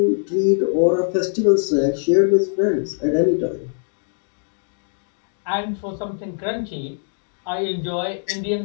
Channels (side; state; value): right; silent; 64 dB below the other